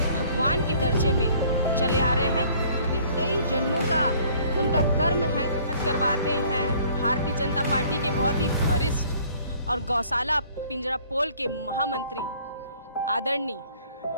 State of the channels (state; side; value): inverted; both; correlation -0.57